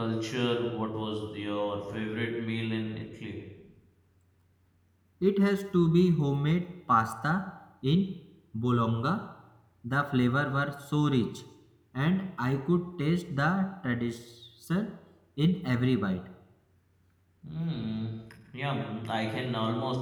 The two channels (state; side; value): identical; both; correlation 1.00